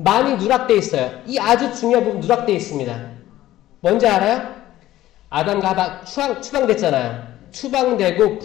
누락되어 있어요. 이 아주 중요한 부분 누락되어 있습니다. 뭔지 알아요? 아담과 하와 추방됐잖아요. 추방되고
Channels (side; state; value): right; quieter; 14.6 dB